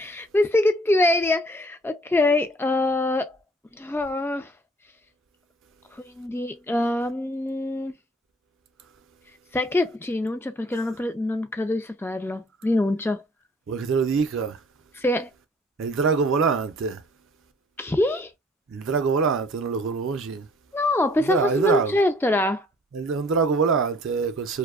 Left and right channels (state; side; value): normal; both; correlation 0.56